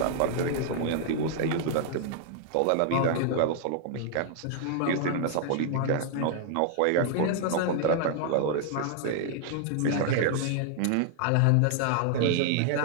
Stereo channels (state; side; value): different; both; correlation 0.00